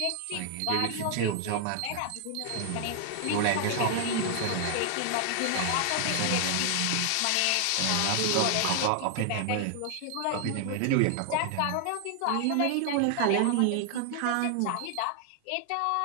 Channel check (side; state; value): both; different; correlation 0.00